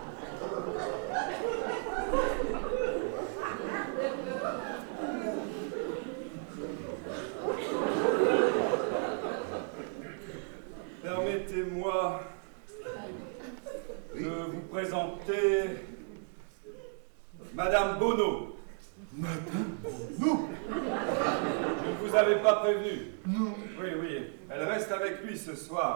Permettez-moi de vous présenter Madame Bonneau. Madame Bonneau? Je ne vous avais pas prévenu. Non. Oui, elle reste avec lui ce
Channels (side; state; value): left; silent; 55 dB below the other